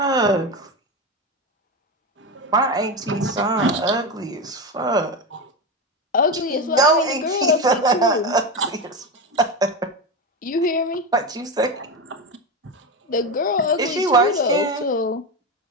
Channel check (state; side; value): normal; both; correlation 0.17